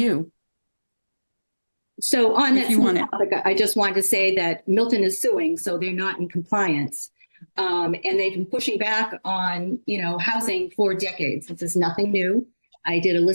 So on If that you want it. topic, I just wanted to say that Milton is suing, so they're not in compliance. And they've been pushing back on, housing for decades. This is nothing new. I did a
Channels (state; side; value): inverted; both; correlation -1.00